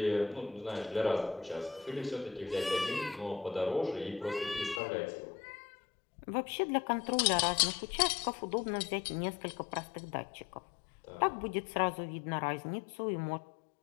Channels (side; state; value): right; drops out; at 4.8 s